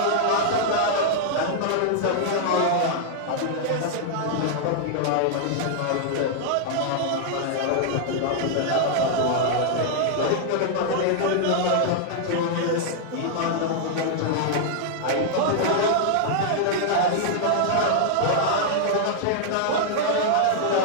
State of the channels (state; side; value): different; both; correlation -0.01